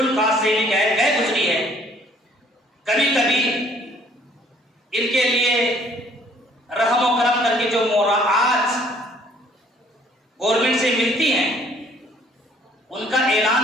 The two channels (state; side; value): normal; both; correlation 0.60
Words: caste से भी गए गुजरी है। कभी कभी इनके लिए रहम और करम करके जो मोराआत गवर्नमेंट से मिलती हैं उनका